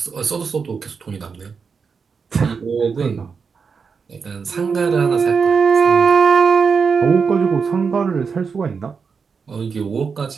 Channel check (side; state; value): left; quieter; 5.6 dB